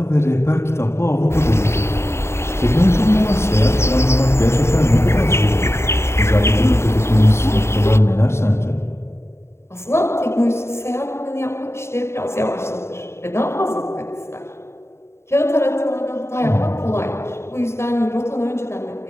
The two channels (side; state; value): right; late; 0.13 ms